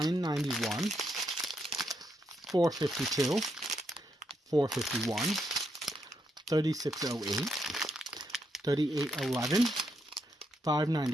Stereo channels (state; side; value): normal; both; correlation 0.79